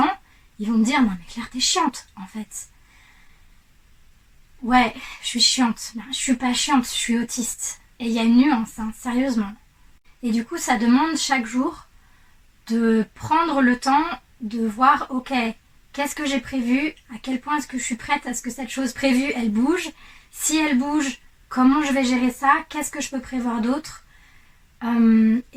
ils vont me dire, non mais Claire, t'es chiante en fait. Ouais, je suis chiante. Ben, je suis pas chiante, je suis autiste. Et il y a une nuance, hein, sérieusement. Et du coup, ça demande chaque jour de prendre le temps de voir, ok, qu'est-ce que j'ai prévu, à quel point est-ce que je suis prête à ce que cette chose prévue, elle bouge. Si elle bouge, comment je vais gérer ça, qu'est-ce que je peux prévoir d'autre.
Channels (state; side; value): identical; both; correlation 1.00